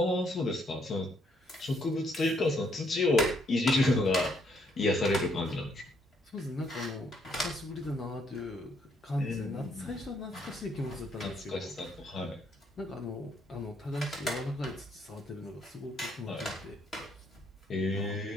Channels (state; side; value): normal; both; correlation 0.71